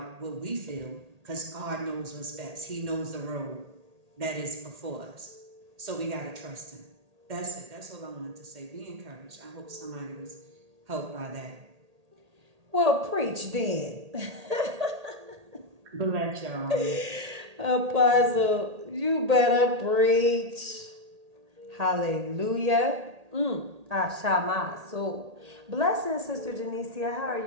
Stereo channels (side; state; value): left; late; 1.8 ms